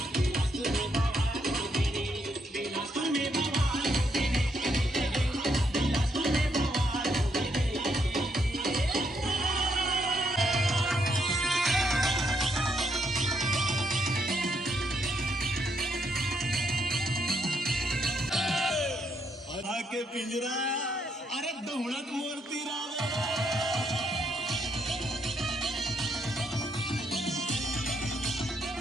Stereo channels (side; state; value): both; normal; correlation 0.76